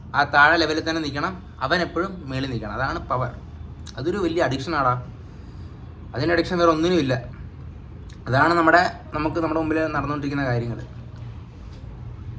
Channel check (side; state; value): both; identical; correlation 1.00